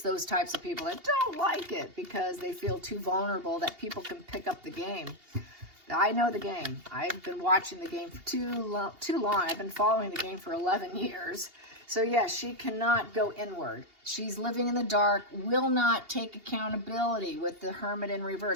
those types of people that don't like it because they feel too vulnerable that people can pick up the game. I know the game. I've been watching the game for too long. I've been following the game for 11 years. So yes, she cannot go inward. She's living in the dark, will not take accountability with the Hermit in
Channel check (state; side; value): late; left; 2.8 ms